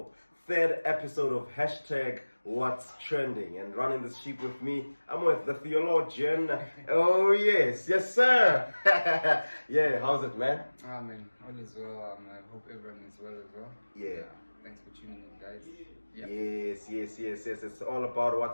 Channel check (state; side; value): inverted; both; correlation -1.00